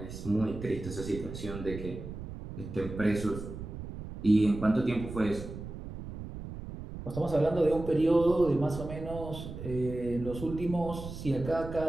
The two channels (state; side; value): noise; right; rumble, 10 dB below the sound